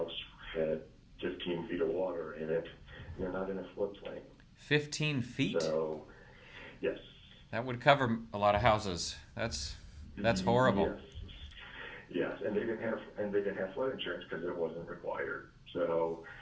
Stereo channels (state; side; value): identical; both; correlation 1.00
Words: had 15 feet of water in it, and they're not in a floodplain. 15 feet? So, yes. That would cover a lot of houses. That's horrible. Yes, and they didn't have flood insurance because it wasn't required. So,